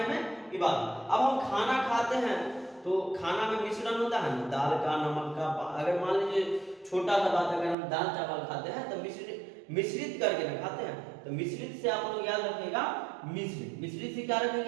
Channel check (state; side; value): drops out; left; at 7.8 s